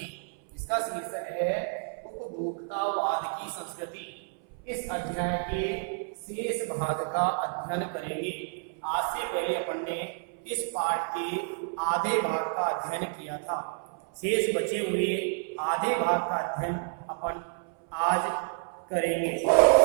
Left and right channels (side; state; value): left; silent; 58 dB below the other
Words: इसका शीर्षक है उपभोक्तावाद की संस्कृति। इस अध्याय के शेष भाग का अध्ययन करेंगे। आज से पहले अपन ने इस पाठ के आधे भाग का अध्ययन किया था। शेष बचे हुए आधे भाग का अध्ययन अपन आज करेंगे।